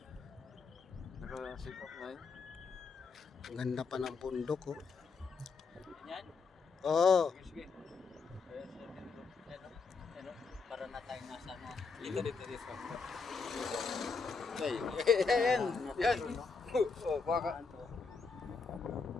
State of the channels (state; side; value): quieter; right; 4.7 dB